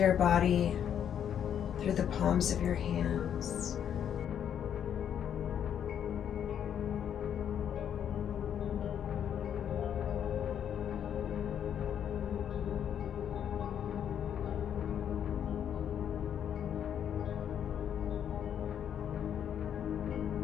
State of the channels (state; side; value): quieter; right; 9.1 dB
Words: body through the palms of your hands.